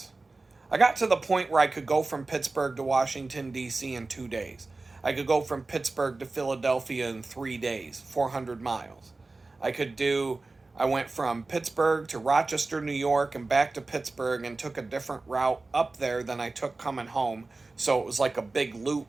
I got to the point where I could go from Pittsburgh to Washington, D.C. in 2 days. I could go from Pittsburgh to Philadelphia in 3 days, 400 miles. I went from Pittsburgh to Rochester, New York, and back to Pittsburgh, and took a different route up there than I took coming home. So it was like a big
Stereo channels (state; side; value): quieter; left; 3.5 dB